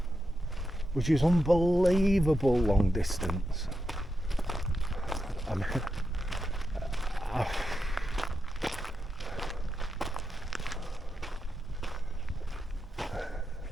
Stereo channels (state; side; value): normal; both; correlation 0.87